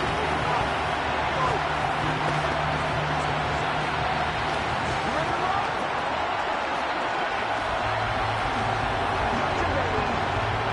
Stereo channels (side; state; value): both; identical; correlation 1.00